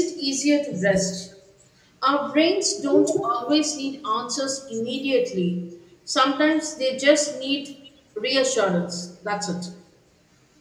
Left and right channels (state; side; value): identical; both; correlation 1.00